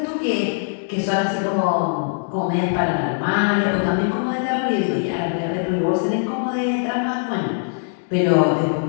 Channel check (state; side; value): silent; right; digital silence